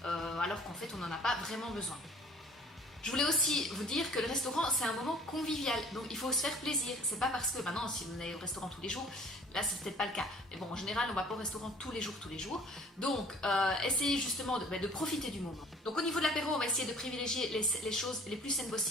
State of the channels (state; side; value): normal; both; correlation 0.51